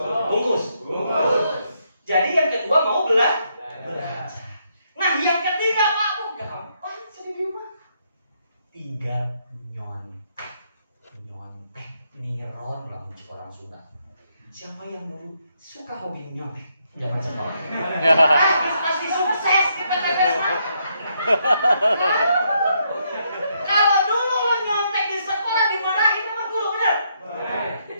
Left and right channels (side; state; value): both; inverted; correlation -0.76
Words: Bungkus. Jadi yang kedua mau belajar. Nah yang ketiga Pak, gampang jadi di rumah. Tinggal nyontek, niron lah orang Sunda. Siapa yang dulu suka hobi nyontek? Jangan sekolah. Pasti sukses kita pepes. Kalau dulu lo nyontek di sekolah dimarahin sama guru, bener?